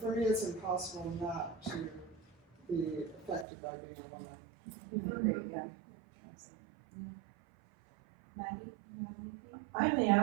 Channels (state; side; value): drops out; left; at 3.5 s